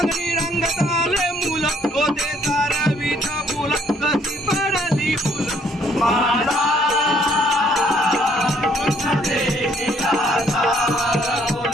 रंगात आले मुल होते तारवीच फुल कशी पडली फुल माझा कृष्ण देखील आता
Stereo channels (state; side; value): normal; both; correlation 0.64